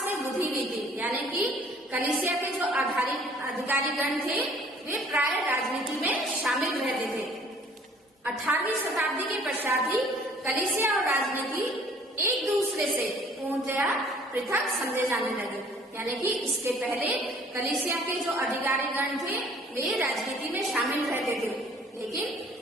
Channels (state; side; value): normal; both; correlation 0.55